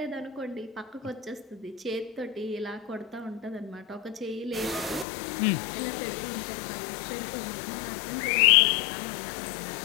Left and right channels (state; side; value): drops out; right; at 5.1 s